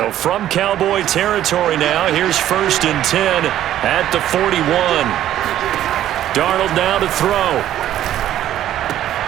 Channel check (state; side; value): quieter; left; 12.1 dB